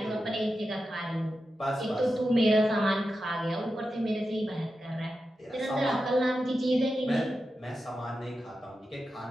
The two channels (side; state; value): both; normal; correlation 0.90